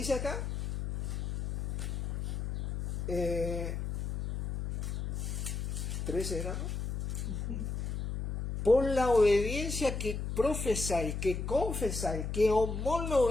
acá, 13 era, ¿no? Por la obediencia que profesáis, que confesáis, que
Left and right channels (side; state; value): left; noise; hum, 3 dB below the sound